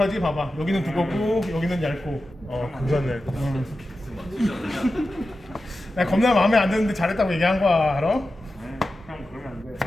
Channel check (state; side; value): normal; both; correlation 0.92